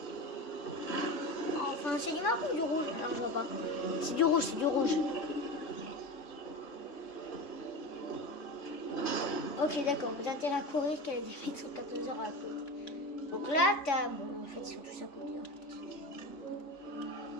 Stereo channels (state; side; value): late; right; 3.5 ms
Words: Enfin, c'est du marron ou du rouge? Alors, je vois pas. C'est du rouge, Ok, d'accord. Vous avez intérêt à courir qu'elle a des fêtes sur 14 heures à côté. Donc là, t'as... Bon, en fait, ils sont tous à côté, en fait.